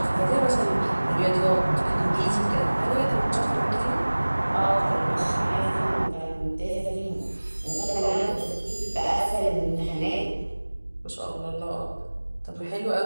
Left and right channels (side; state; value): both; inverted; correlation -1.00